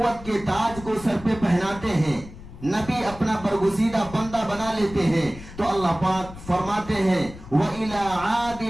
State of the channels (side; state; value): left; noise; rumble, 15 dB below the sound